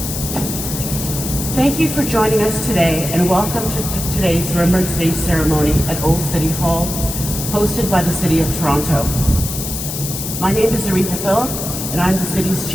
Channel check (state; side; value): noise; left; hiss, 6 dB below the sound